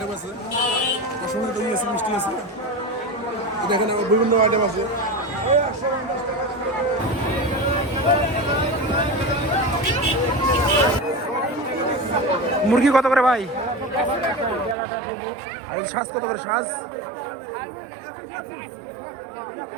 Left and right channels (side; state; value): left; drops out; at 14.8 s